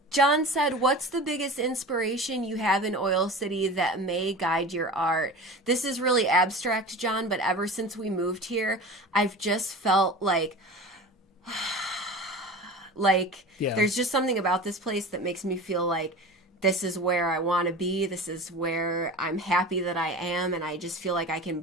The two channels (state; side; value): normal; both; correlation 0.34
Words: John said, what's the biggest inspiration you have in Oil City that may guide your art? This is really abstract, John, but ever since we moved here, I've just felt like there's just something about this place that makes me feel like this is where I want to be. This is where I'm happy that I am. And I just feel like I can